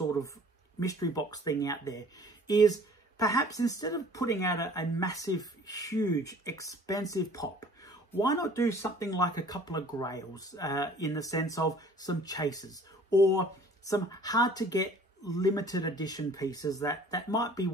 of mystery box thing out there is, perhaps instead of putting out a massive, huge, expensive pop, why not do something like a couple of grails in the sense of some chases or some hard to get limited edition pieces that might be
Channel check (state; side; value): normal; both; correlation 0.51